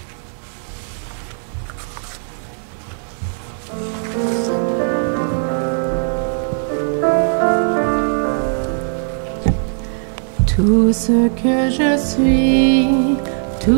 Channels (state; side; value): silent; left; digital silence